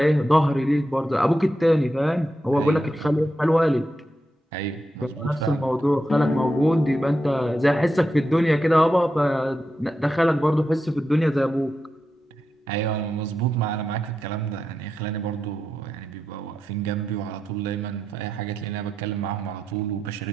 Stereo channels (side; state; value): both; normal; correlation 0.87